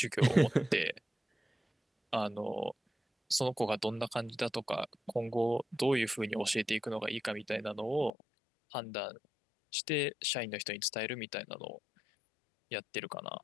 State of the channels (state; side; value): drops out; right; at 8.1 s